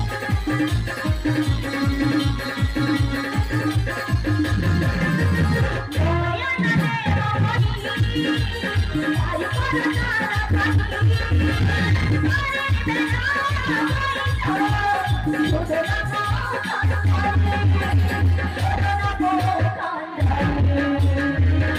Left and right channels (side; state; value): both; identical; correlation 1.00